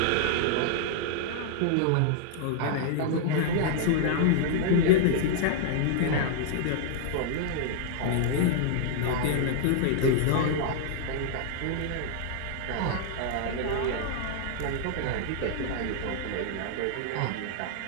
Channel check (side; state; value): both; different; correlation -0.01